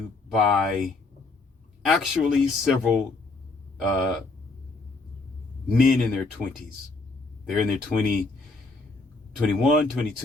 by actually several men in their 20s. They're in their 21,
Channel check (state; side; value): quieter; right; 3.5 dB